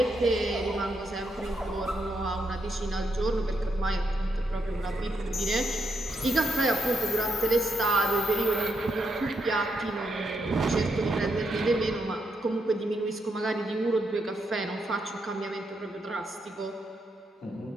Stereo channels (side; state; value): both; normal; correlation 0.80